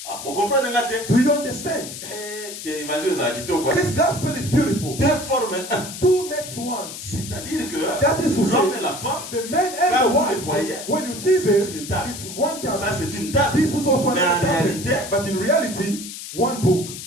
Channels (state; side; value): noise; left; hiss, 10 dB below the sound